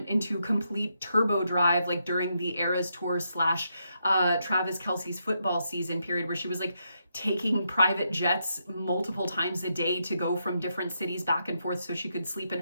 into complete turbo drive, like during the Eras Tour / Travis Kelce's football season period, where she was like taking private jets multiple times a day to go from different cities back and forth so she could sleep in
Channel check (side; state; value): both; inverted; correlation -0.81